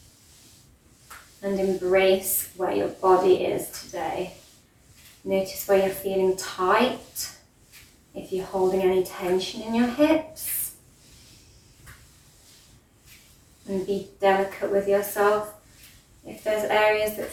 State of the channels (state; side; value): identical; both; correlation 1.00